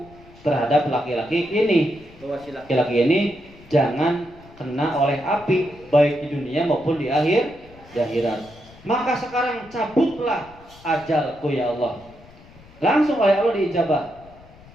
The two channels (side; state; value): left; noise; rumble, 23 dB below the sound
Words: terhadap laki-laki ini, bahwa si laki-laki ini jangan kena oleh api baik di dunia maupun di akhirat. Maka sekarang cabutlah ajalku ya Allah. Langsung oleh Allah diijabah.